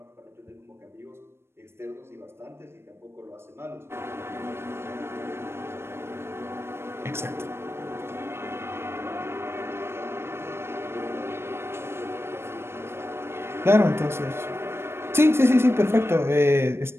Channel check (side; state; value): left; late; 0.12 ms